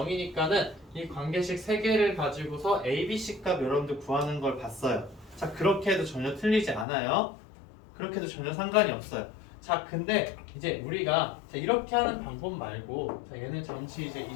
이 관계식 3개를 가지고서 a, b, c 값 여러분들 구하는 걸 봤어요. 자, 그렇게 해도 전혀 틀리지 않아요. 그렇게 해도 전혀 상관이 없어요. 자, 근데 이제 우리가 자, 이렇게 하는 방법 말고 자, 얘는 잠시 이제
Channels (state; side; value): drops out; right; at 6.9 s